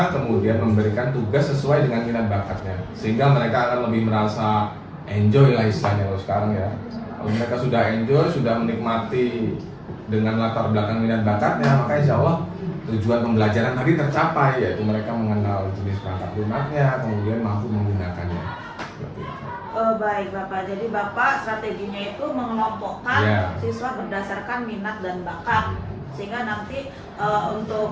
kemudian memberikan tugas sesuai dengan minat bakatnya, sehingga mereka akan lebih merasa enjoy lah istilahnya kalau sekarang ya. Kalau mereka sudah enjoy, sudah menikmati dengan latar belakang minat bakatnya, maka insya Allah tujuan pembelajaran tadi tercapai, yaitu mereka mengenal jenis perangkat lunaknya, kemudian mampu menggunakannya. Seperti itu. Baik Bapak, jadi Bapak strateginya itu mengelompokkan siswa berdasarkan minat dan bakat, sehingga nanti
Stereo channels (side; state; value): both; identical; correlation 1.00